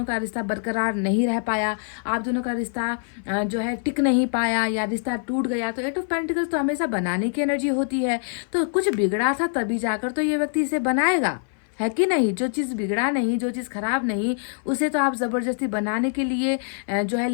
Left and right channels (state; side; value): silent; right; 57 dB below the other